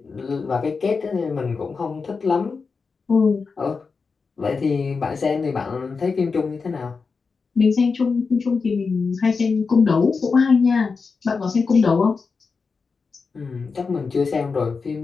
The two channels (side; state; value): right; quieter; 4.8 dB